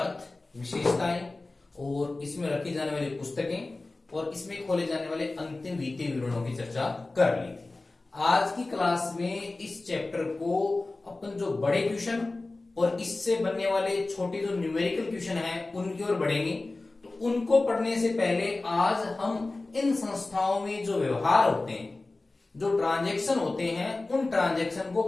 अर्थ, विशेषताएं और इसमें रखी जाने वाली पुस्तकें और इसमें खोले जाने वाले अंतिम वित्तीय विवरणों की चर्चा कर ली थी। आज की क्लास में इस चैप्टर को अपन जो बड़े क्वेश्चन और इससे बनने वाले छोटे जो न्यूमेरिकल क्वेश्चन हैं उनकी ओर बढ़ेंगे। तो उनको पढ़ने से पहले आज हम इन संस्थाओं में जो व्यवहार होते हैं, जो ट्रांजैक्शन होते हैं, उन ट्रांजैक्शन को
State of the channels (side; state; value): right; quieter; 3.2 dB